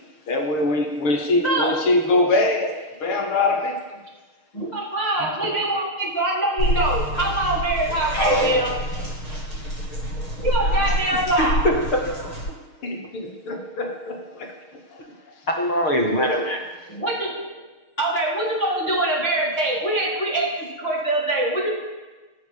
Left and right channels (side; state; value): right; late; 6.5 ms